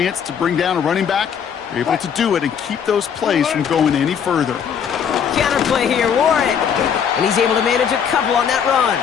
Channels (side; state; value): right; quieter; 7.7 dB